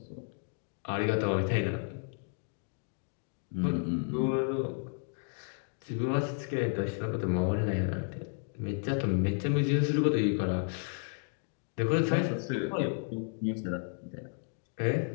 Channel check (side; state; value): right; silent; 56 dB below the other